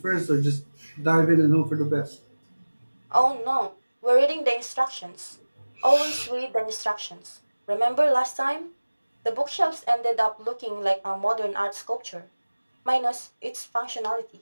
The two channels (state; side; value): inverted; both; correlation -1.00